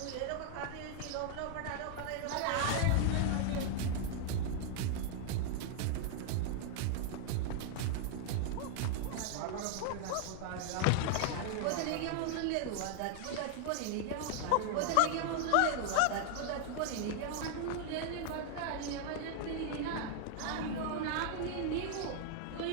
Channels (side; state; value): both; different; correlation 0.00